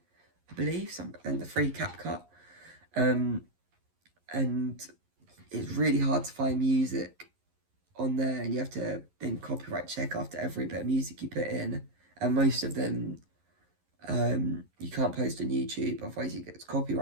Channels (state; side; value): late; left; 11 ms